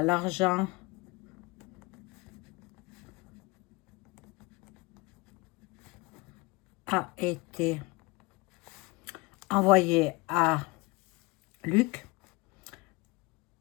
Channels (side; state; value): right; quieter; 24.3 dB